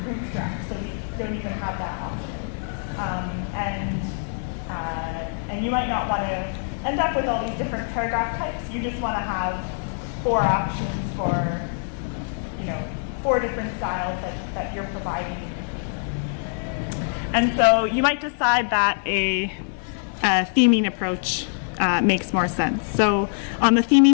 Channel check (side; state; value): right; silent; 61 dB below the other